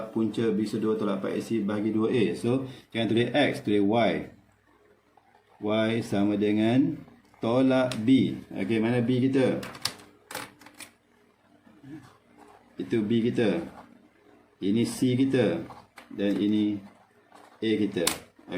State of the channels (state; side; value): identical; both; correlation 1.00